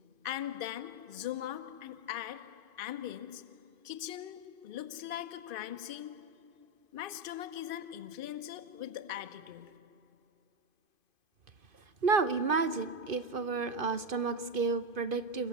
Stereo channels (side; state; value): left; late; 2.5 ms